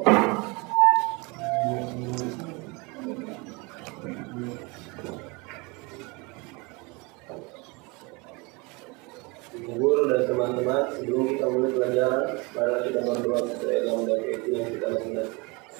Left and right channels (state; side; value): quieter; left; 27.6 dB